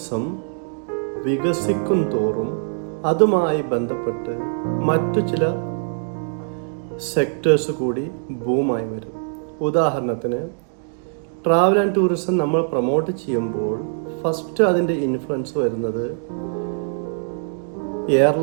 വികസിക്കും തോറും അതുമായി ബന്ധപ്പെട്ട് മറ്റു ചില സെക്ടേഴ്സ് കൂടി ബൂമായി വരും. ഉദാഹരണത്തിന്, ട്രാവൽ ആൻഡ് ടൂറിസം നമ്മൾ പ്രൊമോട്ട് ചെയ്യുമ്പോൾ ഫസ്റ്റ് അതിൻ്റെ ഇൻഫ്ലുവൻസ് വരുന്നത്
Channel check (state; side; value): silent; left; digital silence